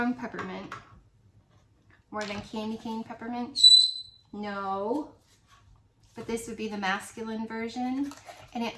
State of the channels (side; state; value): both; identical; correlation 1.00